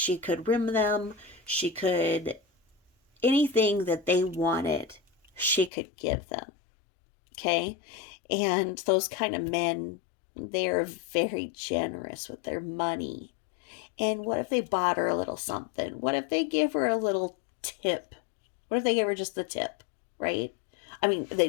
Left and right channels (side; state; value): right; drops out; at 5.7 s